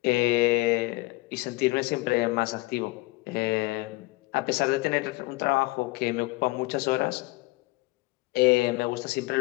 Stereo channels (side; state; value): right; quieter; 22.9 dB